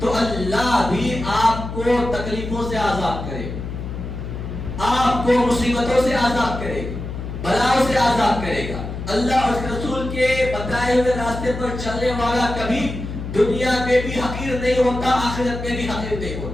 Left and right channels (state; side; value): noise; left; hum, 7 dB below the sound